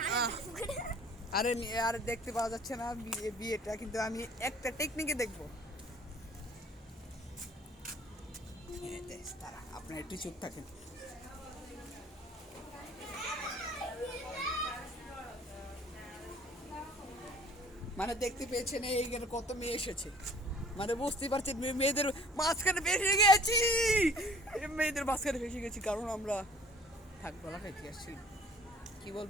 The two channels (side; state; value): both; normal; correlation 0.52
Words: আহ, আরে দেখতে পাওয়া যাচ্ছে না বিয়েটা, কিন্তু আমি একটা টেকনিকে দেখবো। তারা আপনার একটু চুপ থাকেন। মানে দেখতে পেয়েছেন এইখানে কত মেয়ে এসেছে, মানে বুঝতেই পারছেন মেয়েদের মাঝখানে ভেসে গেছি। মেয়েদের মাঝখানে ভেসে গেছি কারণ আমরা থাক বলা খাইতে আসছি। কি